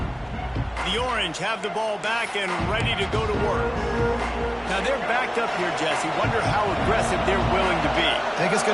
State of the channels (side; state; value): both; identical; correlation 1.00